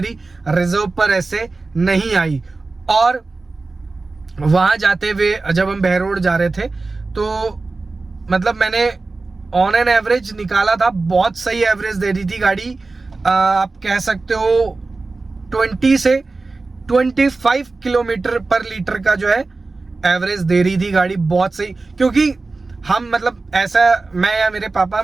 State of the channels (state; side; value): quieter; left; 3.6 dB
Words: रिजर्व पर ऐसे नहीं आई। और वहां जाते हुए जब हम बहरोड जा रहे थे तो मतलब मैंने ऑन एन एवरेज निकाला था, बहुत सही एवरेज दे रही थी गाड़ी। आप कह सकते हो 20 से 25 किलोमीटर पर लीटर का जो है एवरेज दे रही थी गाड़ी, बहुत सही। क्योंकि हम मतलब ऐसा, मैं या मेरे पापा